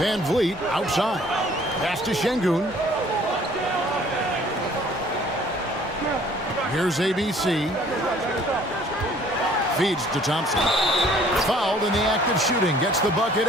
Vliet outside. Pass to Şengün. Here's ABC. Feeds to Thompson. Fouled in the act of shooting. Gets the bucket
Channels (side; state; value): both; normal; correlation 0.56